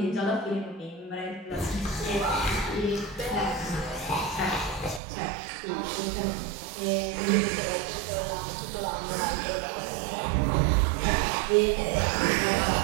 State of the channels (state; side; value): drops out; left; at 5.0 s